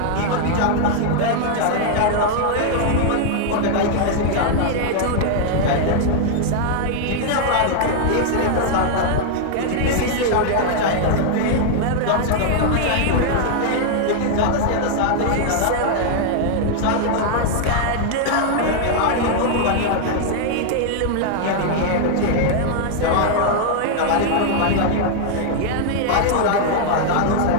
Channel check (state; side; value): different; both; correlation 0.00